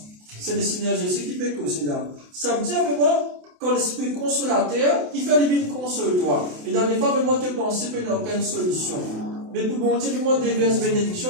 C'est le Seigneur Jésus qui peut causer là. Ça veut dire vraiment quand l'Esprit consolateur qui fait le bien console toi. Et dans les fois vraiment te penser qu'il n'y a aucune solution. Mais pour bon Dieu vraiment déverse bénédiction,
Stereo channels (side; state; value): left; late; 28 ms